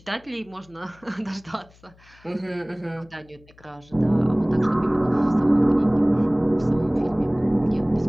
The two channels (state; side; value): noise; left; hum, 28 dB below the sound